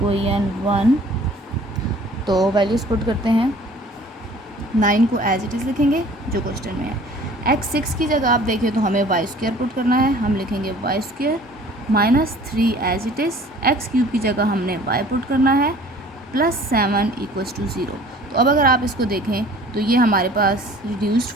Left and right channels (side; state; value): both; normal; correlation 0.50